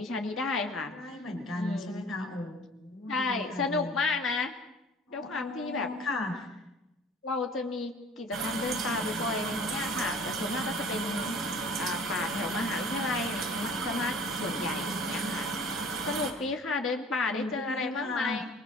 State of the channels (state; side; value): normal; both; correlation 0.47